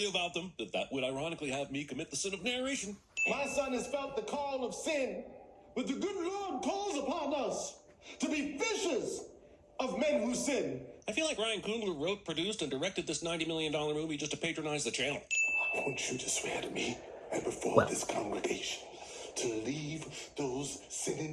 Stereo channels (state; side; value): identical; both; correlation 1.00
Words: about them, but that would ironically have me commit the sin of narration. My son has felt the call of sin, but the good Lord calls upon us to be fishers of men who sin. I feel like Ryan Coogler wrote, produced, and directed this $90 million movie just to patronize the channel. I want you to swear to me and before this congregation to leave those